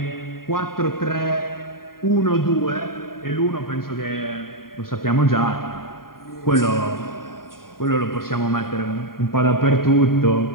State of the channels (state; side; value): late; right; 0.92 ms